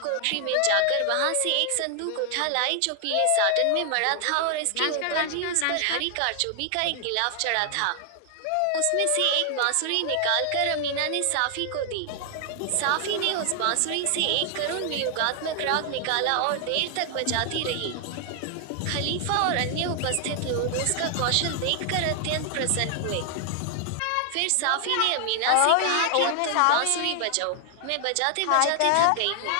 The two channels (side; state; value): both; different; correlation 0.00